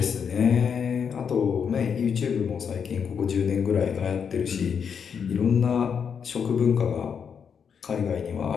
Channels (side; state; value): right; quieter; 6.9 dB